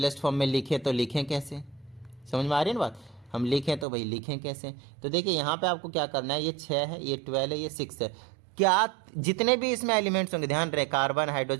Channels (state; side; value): drops out; left; at 3.9 s